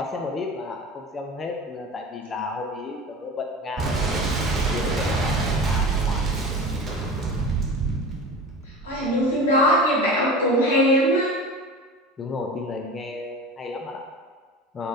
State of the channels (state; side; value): normal; both; correlation 0.33